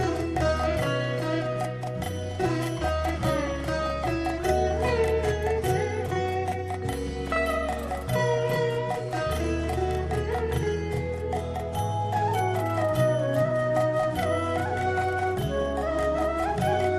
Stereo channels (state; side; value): identical; both; correlation 1.00